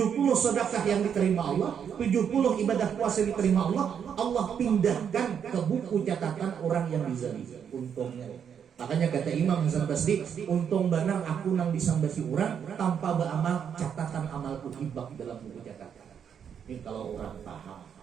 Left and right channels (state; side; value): quieter; left; 7.9 dB